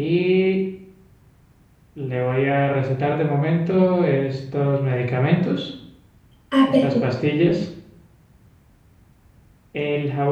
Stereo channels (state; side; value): identical; both; correlation 1.00